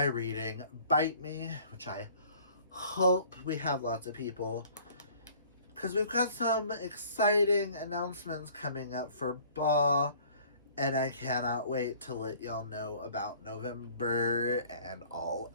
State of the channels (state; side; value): inverted; both; correlation -0.53